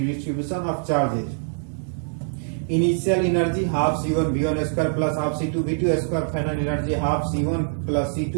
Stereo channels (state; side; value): silent; left; digital silence